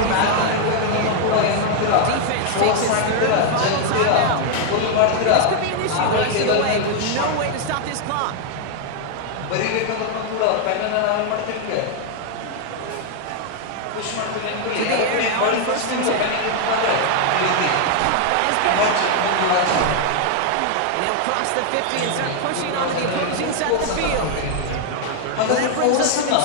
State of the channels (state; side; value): different; both; correlation 0.00